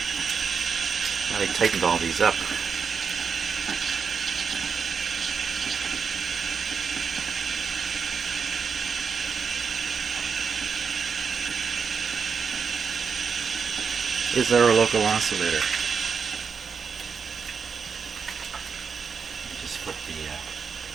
Now they tightened all these up. Is there a local oscillator? Just flip the...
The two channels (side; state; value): left; quieter; 5.9 dB